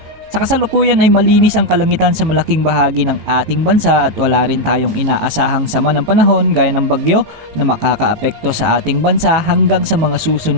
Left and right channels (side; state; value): left; late; 18 ms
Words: Sa kasalukuyan ay malinis ang kalangitan sa malaking bahagi ng ating bansa at wala rin tayong inaasahang sama ng panahon gaya ng bagyo na makakaapekto sa ating bansa hanggang sa mga